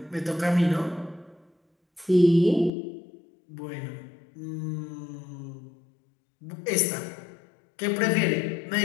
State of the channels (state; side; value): drops out; right; at 2.7 s